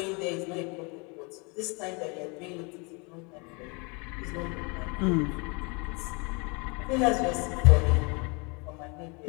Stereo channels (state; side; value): quieter; right; 30.8 dB